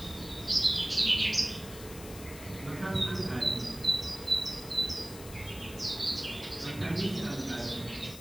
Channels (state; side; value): noise; left; hiss, 15 dB below the sound